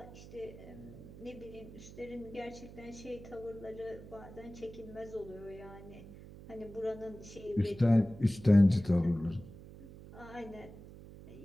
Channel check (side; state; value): right; noise; hum, 16 dB below the sound